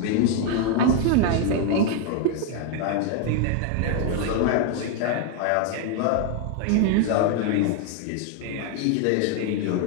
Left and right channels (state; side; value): different; both; correlation 0.00